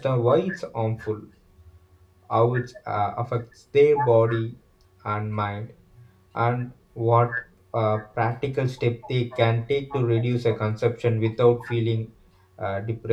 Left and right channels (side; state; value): both; identical; correlation 1.00